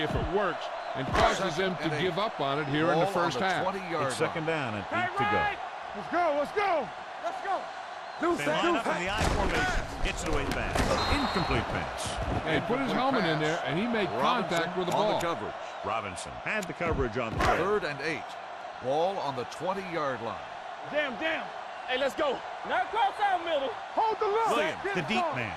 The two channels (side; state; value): both; identical; correlation 1.00